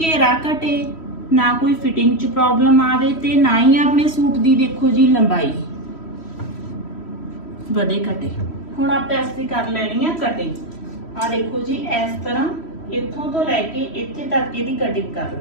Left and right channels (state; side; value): late; right; 3.1 ms